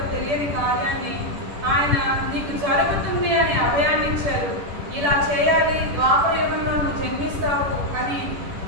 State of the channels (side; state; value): left; late; 10 ms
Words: తెలియని కార్యాన్ని ఆయన నీకు జరుగుతుంది అని అభయాన్ని ఇచ్చారు. ఇలా చేయాలి, ద్వాపర యుగంలో నువ్వు జన్మిస్తావు అని